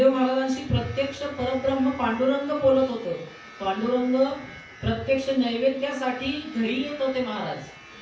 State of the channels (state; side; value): identical; both; correlation 1.00